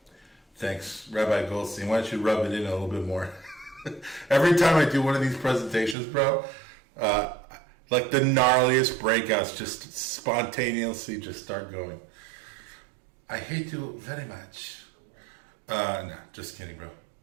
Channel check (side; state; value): left; drops out; at 6.0 s